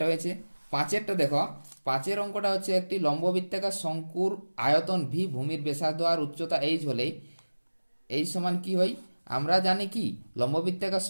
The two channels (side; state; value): both; inverted; correlation -1.00